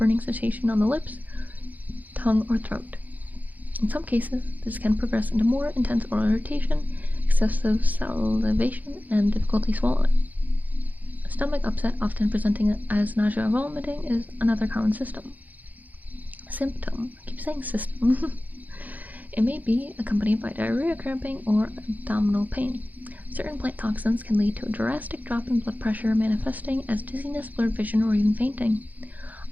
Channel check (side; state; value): left; late; 0.081 ms